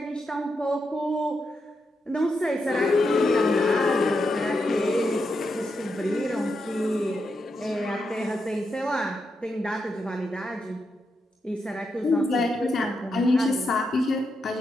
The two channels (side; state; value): both; normal; correlation 0.84